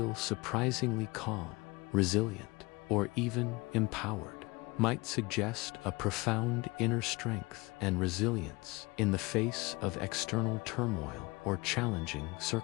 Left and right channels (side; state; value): right; quieter; 24.0 dB